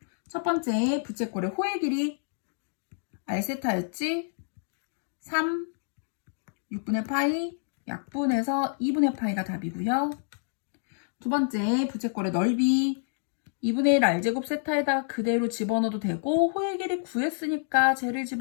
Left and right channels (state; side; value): silent; right; digital silence